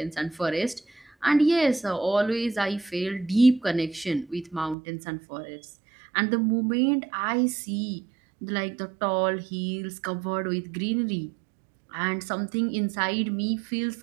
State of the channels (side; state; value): left; drops out; at 4.8 s